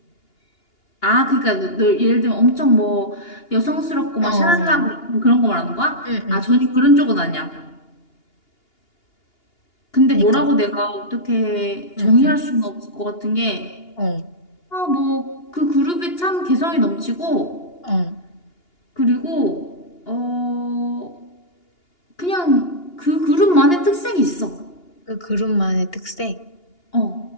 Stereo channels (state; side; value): late; right; 2.8 ms